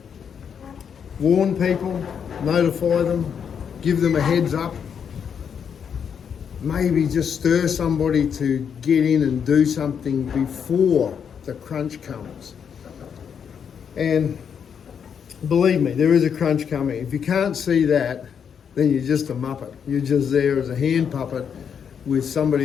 warn people, notify them, give them a heads up, maybe just stir somebody to get in and do something before the crunch comes. And believe me, there is a crunch coming. If you can't see that, then you're just a muppet. You're just there as a hand puppet with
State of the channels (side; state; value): right; quieter; 7.4 dB